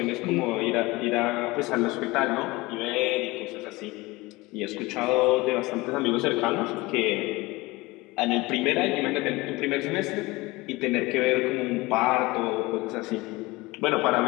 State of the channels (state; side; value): quieter; right; 21.9 dB